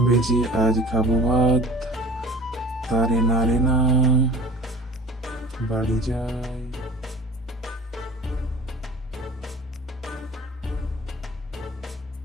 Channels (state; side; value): normal; both; correlation 0.44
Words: বেজে আজ খাবো ভাত, তারে না রে না, বাড়ি যাই।